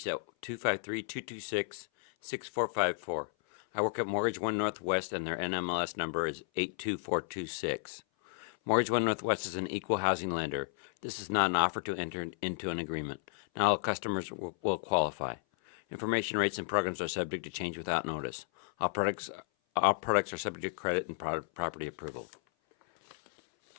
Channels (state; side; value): silent; right; 56 dB below the other